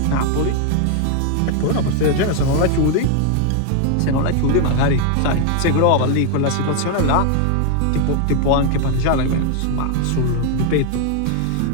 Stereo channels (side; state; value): both; different; correlation 0.00